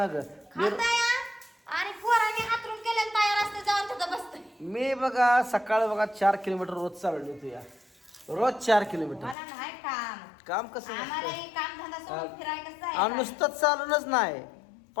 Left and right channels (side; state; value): right; drops out; at 9.3 s